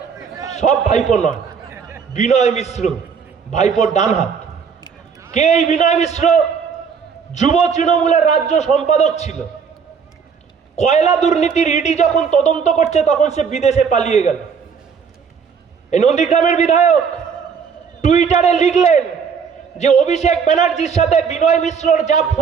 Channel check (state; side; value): quieter; left; 6.3 dB